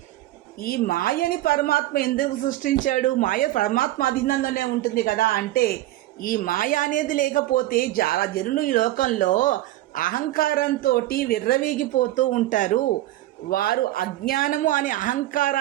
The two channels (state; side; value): quieter; left; 15.7 dB